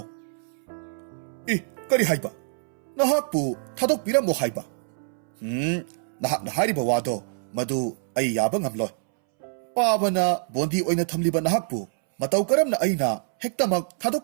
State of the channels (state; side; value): silent; left; 61 dB below the other